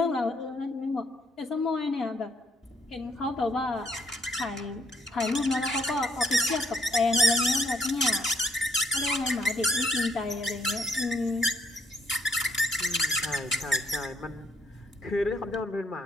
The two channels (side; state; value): both; normal; correlation 0.70